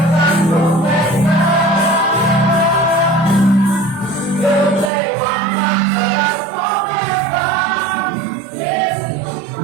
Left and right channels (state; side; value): drops out; left; at 4.9 s